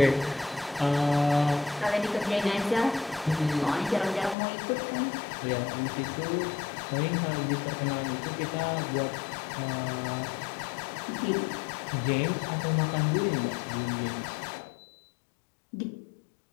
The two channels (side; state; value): right; drops out; at 4.4 s